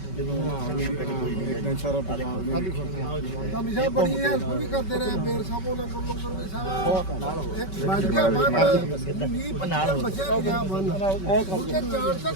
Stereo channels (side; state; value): right; late; 5.3 ms